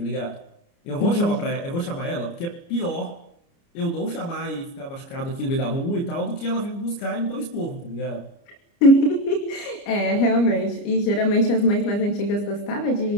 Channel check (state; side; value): late; right; 29 ms